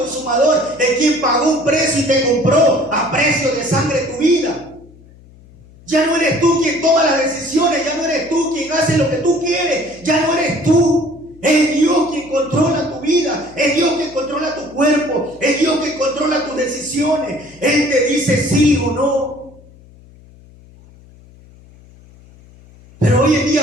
el quien pagó un precio y te compró a precio de sangre tu vida. Ya no eres tú quien toma las decisiones, ya no eres tú quien hace lo que tú quieres, ya no eres tú. Es Dios quien controla tu vida, es Dios quien controla tu cuerpo, es Dios quien controla tus decisiones. Él te dice sí o no. Pero hoy en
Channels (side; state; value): left; noise; hum, 24 dB below the sound